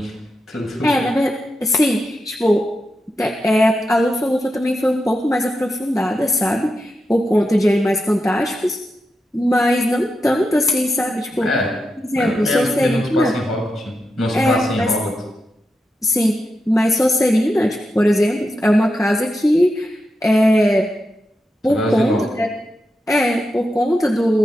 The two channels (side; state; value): both; normal; correlation 0.87